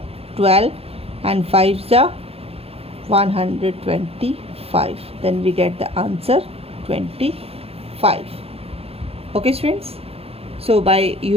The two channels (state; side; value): late; left; 0.29 ms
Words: 12 and 5 ja 125, then we get the answer 25. Okay students, so by